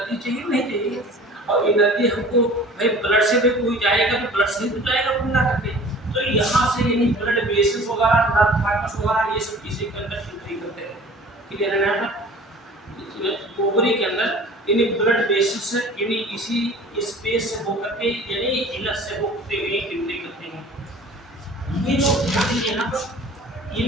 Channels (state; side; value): normal; both; correlation 0.46